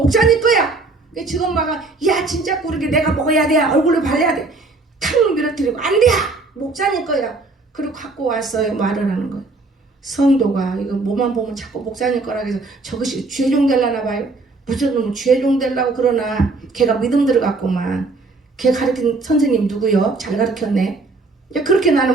거야. 지금 막야 진짜 그렇게 내가 먹어야 돼. 얼굴에 발라야 돼. 탁 밀어뜨리고 안 돼. 목사님 거야. 그리고 갖고 왔어요. 말을 하는 거예요. 성도가 이거 뭐만 보면 자꾸 목사님 거라 해서 저것이 죄종 되려나 봐요. 무슨 놈은 죄종 되려고 그러나 걔가 믿음 들어갔구만. 걔 가르친 선생님 누구요? 잘 가르쳤네. 그렇게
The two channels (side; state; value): left; quieter; 3.5 dB